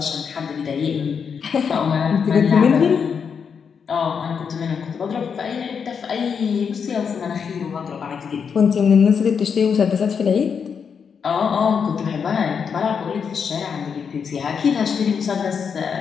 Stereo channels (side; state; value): right; quieter; 6.5 dB